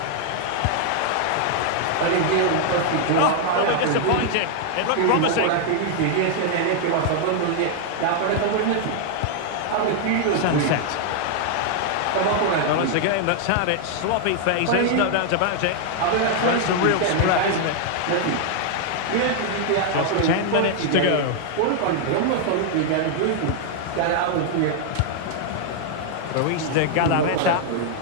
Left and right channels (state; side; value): different; both; correlation 0.00